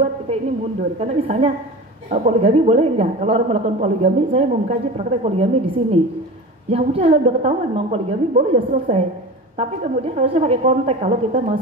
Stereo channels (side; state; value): both; normal; correlation 0.32